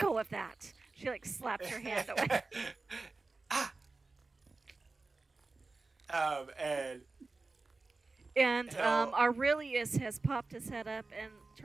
of that. She like slaps her hand away. Ah. And Hell. Aurelius has popped his head up and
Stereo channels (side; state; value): left; quieter; 3.6 dB